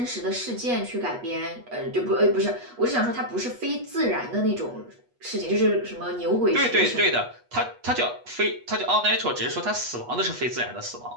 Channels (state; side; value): late; left; 8.3 ms